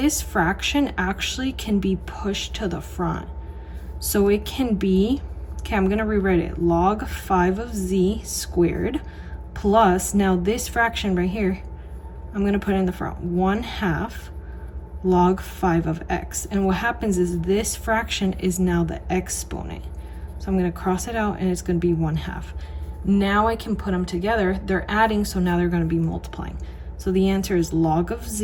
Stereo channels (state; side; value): identical; both; correlation 1.00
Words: fraction actually can be pushed to the front. So it can be, okay, I'm going to rewrite it. Log 5 of z squared plus, now this fraction right here, I'm going to put in the front, 1/2 log 5 of x. And what happens is this fraction is now the exponent. So I'm going to cross it out, and it's going to be 1/2. Now I can put them together. They're adding, so now they're going to be multiplying. So the answer is log of